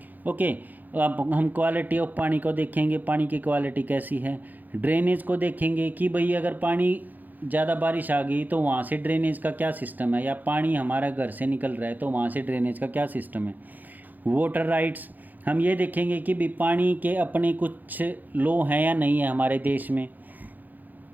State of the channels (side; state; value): left; late; 0.084 ms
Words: ओके, अब हम क्वालिटी ऑफ पानी को देखेंगे, पानी की क्वालिटी कैसी है। ड्रेनेज को देखेंगे कि भाई अगर पानी ज़्यादा बारिश आ गई तो वहाँ से ड्रेनेज का क्या सिस्टम है, या पानी हमारा घर से निकल रहा है तो वहाँ से ड्रेनेज का क्या सिस्टम है। वाटर राइट्स, हम ये देखेंगे कि भी पानी के अपने कुछ लॉ हैं या नहीं है हमारे देश में